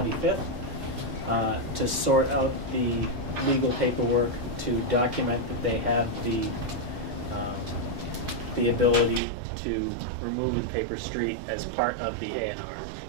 to sort out the legal paperwork to document that they have the ability to remove the paper street as part of the A&R.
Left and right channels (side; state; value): left; drops out; at 9.2 s